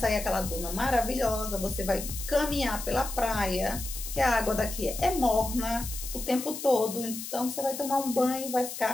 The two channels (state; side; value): noise; left; hiss, 8 dB below the sound